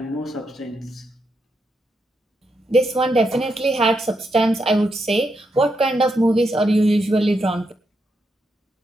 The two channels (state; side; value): normal; both; correlation 0.82